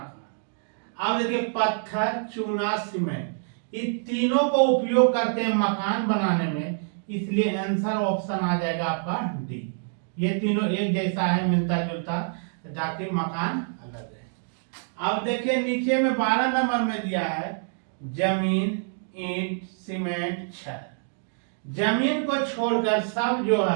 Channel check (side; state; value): left; silent; digital silence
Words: अब देखिए पत्थर, चूना, सीमेंट ये तीनों को उपयोग करते हैं मकान बनाने में। इसलिए आंसर ऑप्शन आ जाएगा आपका डी। ये तीनों एक जैसा है, मिलता जुलता, जाके मकान अलग है। अब देखिए नीचे में 12 नंबर में दिया है जमीन, ईंट, सीमेंट, छड़। जमीन को छोड़कर सब जो